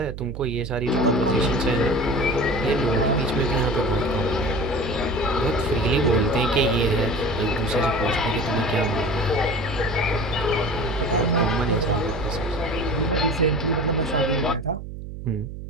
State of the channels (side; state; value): right; noise; hum, 10 dB below the sound